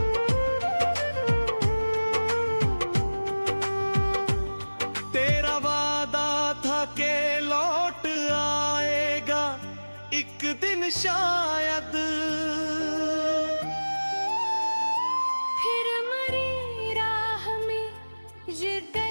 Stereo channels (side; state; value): both; inverted; correlation -1.00